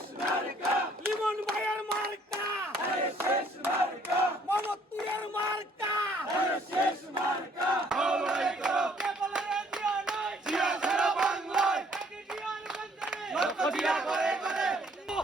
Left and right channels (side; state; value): both; normal; correlation 0.62